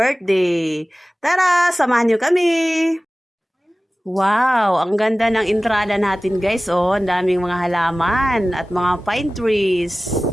Tara! Samahan niyo kami! Wow! Ang ganda ng entrada natin guys, oh! Ang daming mga halaman at mga pine trees.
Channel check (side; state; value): both; normal; correlation 0.97